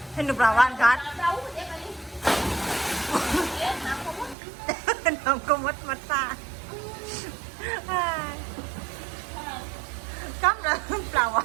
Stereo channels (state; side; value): drops out; left; at 4.4 s